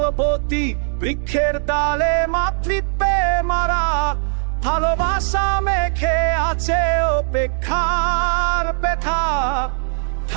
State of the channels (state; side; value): silent; left; digital silence